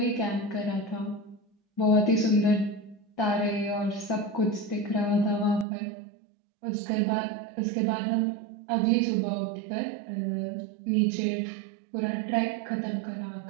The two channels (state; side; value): drops out; left; at 5.7 s